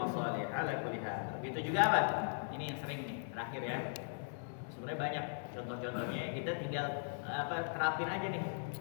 ala kulli hal. Begitu juga apa? Ini yang sering nih, terakhir ya. Sebenarnya banyak contoh-contohnya. Kita tinggal terapin aja nih.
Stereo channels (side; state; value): right; silent; 52 dB below the other